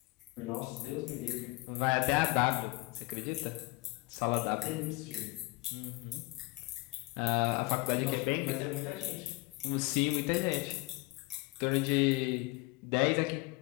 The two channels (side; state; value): right; quieter; 23.2 dB